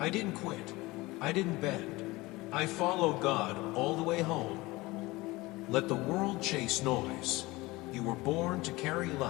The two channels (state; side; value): quieter; right; 21.1 dB